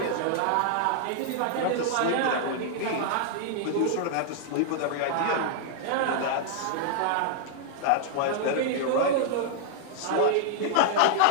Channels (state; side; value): different; both; correlation -0.01